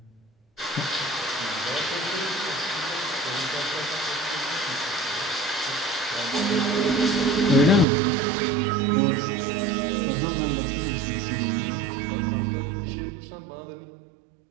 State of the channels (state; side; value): drops out; left; at 7.9 s